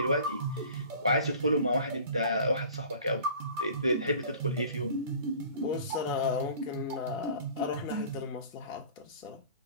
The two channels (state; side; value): inverted; both; correlation -0.45